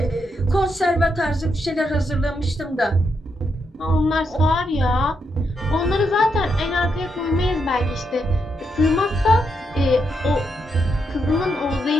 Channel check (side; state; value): both; normal; correlation 0.81